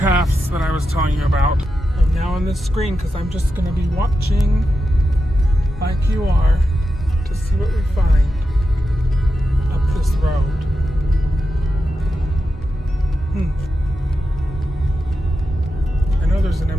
that I was telling you about. I'm now on this screen because I'm just going to be watching like you are to see what we find up this road. I know there's an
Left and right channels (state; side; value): normal; both; correlation 0.89